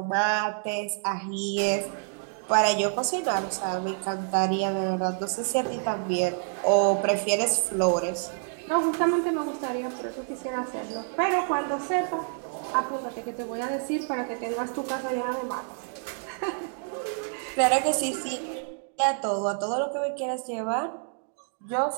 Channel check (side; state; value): left; silent; 59 dB below the other